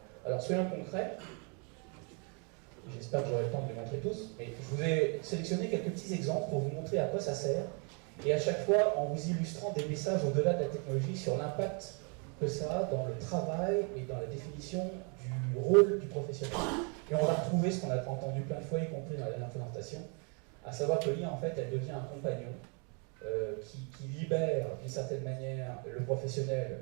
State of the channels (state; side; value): quieter; left; 36.2 dB